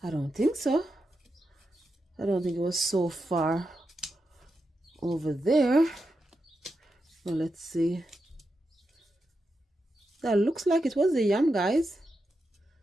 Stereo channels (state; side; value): normal; both; correlation 0.87